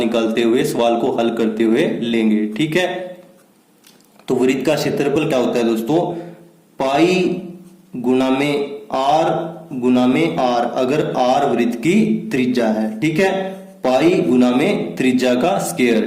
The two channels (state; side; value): identical; both; correlation 1.00